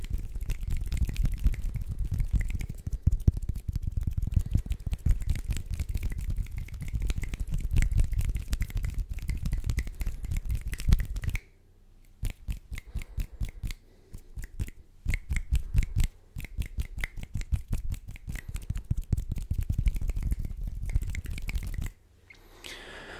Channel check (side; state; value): both; identical; correlation 1.00